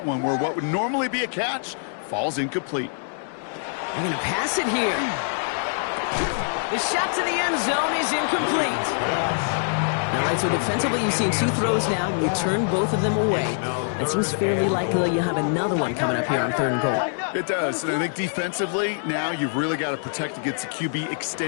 one where what would normally be a catch falls incomplete. They're going to pass it here. The shot to the end zone is incomplete. All right, so defensively you've seen 2 throws now, and you turn both of them away. It seems fairly likely you have another one coming up here on 3rd and goal. It does, and I think defensively, now you've really got to protect against the QB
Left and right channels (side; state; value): right; silent; 62 dB below the other